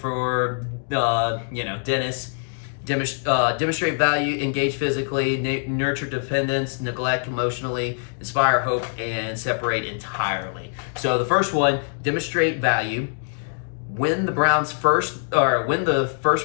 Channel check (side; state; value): right; silent; digital silence